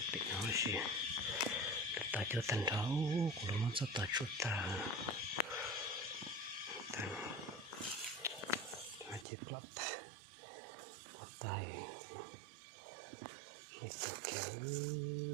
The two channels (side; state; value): left; drops out; at 9.2 s